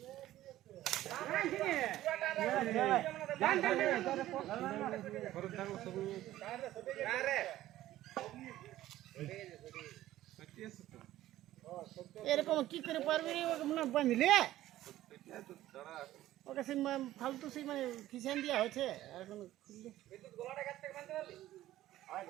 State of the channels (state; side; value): quieter; left; 14.5 dB